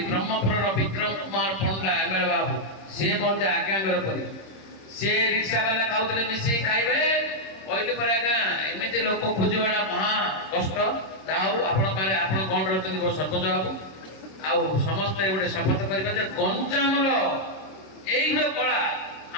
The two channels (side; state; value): right; late; 26 ms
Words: ବ୍ରହ୍ମପୁରର ବିକ୍ରମ କୁମାର ପଣ୍ଡା MLA ବାବୁ, ସିଏ ମଧ୍ୟ ଆଜ୍ଞାଙ୍କର କରିବେ। ସିଏ ରିକ୍ସାବାଲା ଖାଉଥିଲେ ମିଶିକି ଖାଇବେ କହିଲେ ପରେ ଆଜ୍ଞା ଏମିତି ଲୋକ ଖୋଜିବାଟା ମହା କଷ୍ଟ। ଯାହା ହଉ ଆପଣ କ'ଣ ରହୁଛନ୍ତି ସରପଞ୍ଚ ବାବୁ। ଆଉ ସମସ୍ତେ ଗୋଟେ ଶପଥ କରିବା ଯେ ଗଞ୍ଜାମର ଏଇ ଯୋଉ କଳା